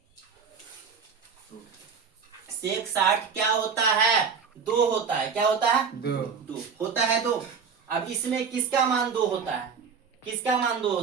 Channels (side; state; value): left; quieter; 6.0 dB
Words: सेक 60 क्या होता है 2 होता है, क्या होता है 2 होता है 2। अब इसमें किसका मान 2 होता है, किसका मान 2